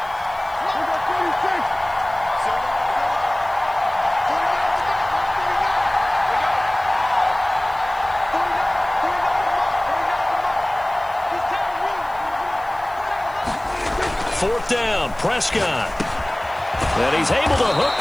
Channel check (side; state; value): left; noise; hiss, 26 dB below the sound